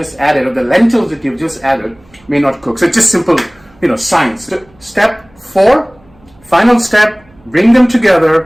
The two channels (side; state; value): right; noise; hum, 30 dB below the sound